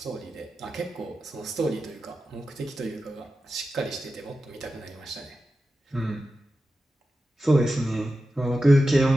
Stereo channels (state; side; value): normal; both; correlation 0.92